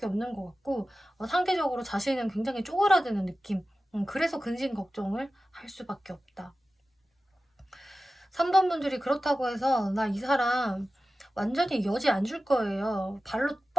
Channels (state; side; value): normal; both; correlation 0.95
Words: 없는 것 같고, 상대적으로 자신은 굉장히 쪼그라드는 느낌. 그래서 근심 걱정을 할 수밖에 없다. 3번 분들이 그렇다고 해서 나 이 사람 완전히 여지 안 줄 거예요, 발로